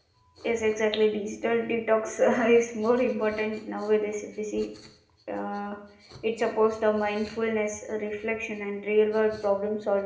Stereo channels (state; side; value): identical; both; correlation 1.00